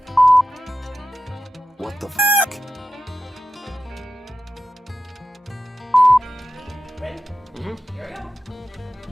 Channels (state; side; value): normal; both; correlation 0.91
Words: What the f***?